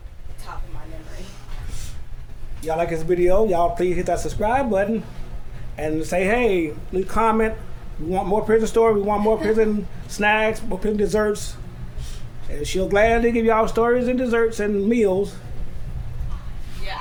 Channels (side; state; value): both; identical; correlation 1.00